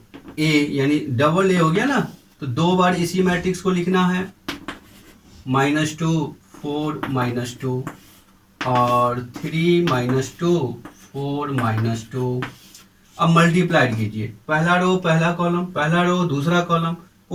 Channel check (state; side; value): identical; both; correlation 1.00